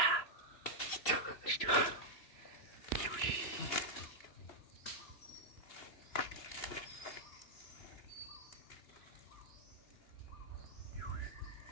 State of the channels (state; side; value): late; right; 3.0 ms